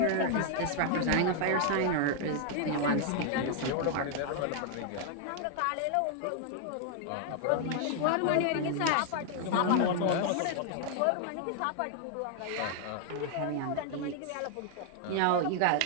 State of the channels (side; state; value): both; different; correlation 0.00